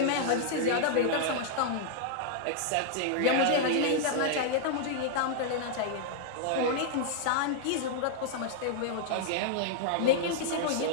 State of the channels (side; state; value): both; different; correlation -0.01